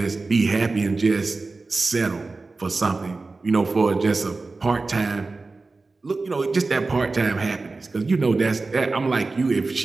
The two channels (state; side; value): quieter; left; 3.7 dB